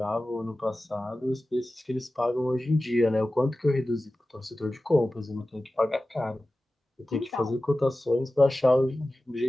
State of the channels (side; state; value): both; normal; correlation 0.95